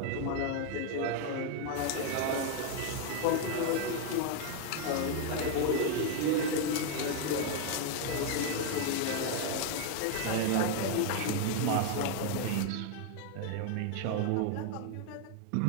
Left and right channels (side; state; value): both; different; correlation 0.00